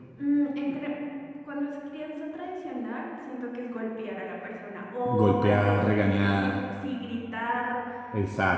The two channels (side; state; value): both; identical; correlation 1.00